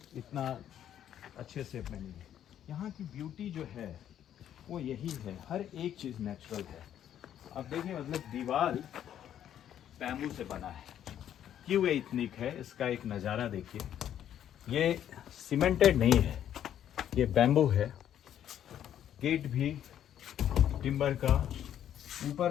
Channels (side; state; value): right; quieter; 10.4 dB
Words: इतना अच्छे से बनी है। यहाँ की ब्यूटी जो है वो यही है, हर एक चीज़ नेचुरल है। अब देखिए, मतलब दीवार बैम्बू से बना है। क्यों ये इतनी है, इसका एक नज़ारा देखिए। ये सीमेंटेड नहीं है, ये बैम्बू है। गेट भी टिम्बर का,